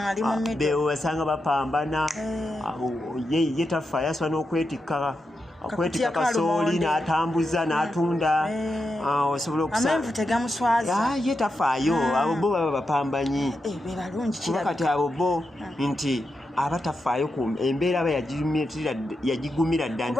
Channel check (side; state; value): both; normal; correlation 0.87